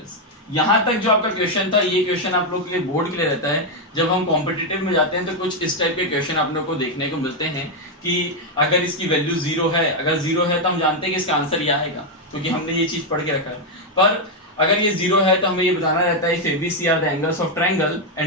यहाँ तक जो आपका question था, ये question आप लोग के लिए बोर्ड के लिए रहता है। जब हम कॉम्पिटिटिव में जाते हैं तो कुछ इस टाइप के क्वेश्चन आप लोग को देखने को मिलते हैं कि अगर इसकी वैल्यू 0 है, अगर 0 है तो हम जानते हैं कि इसका आंसर ये आएगा, क्योंकि हमने ये चीज पढ़ के रखा है। पर अगर ये 0 है तो हमें ये बताना रहता है if ABC are the angles of triangle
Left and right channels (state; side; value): normal; both; correlation 0.02